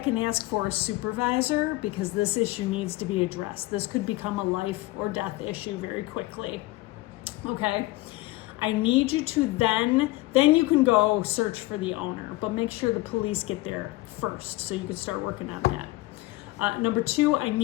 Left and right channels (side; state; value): right; quieter; 19.6 dB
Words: and ask for a supervisor, because this issue needs to be addressed. This could become a life or death issue very quickly. Okay? I need you to then you can go search for the owner, but make sure the police get there first so you can start working on that. Number 2, I